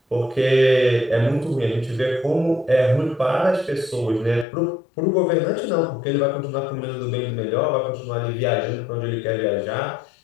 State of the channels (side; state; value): right; drops out; at 4.5 s